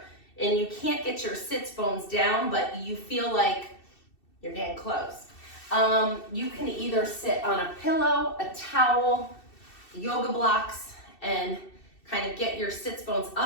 and you can't get your sits bones down, but you feel like you're getting close, you can either sit on a pillow, a towel, yoga blocks, and kind of get your sits bones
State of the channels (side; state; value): right; late; 2.7 ms